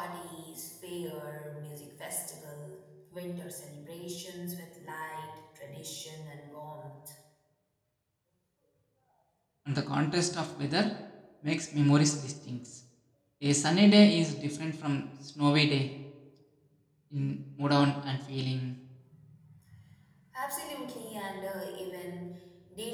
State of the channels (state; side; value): identical; both; correlation 1.00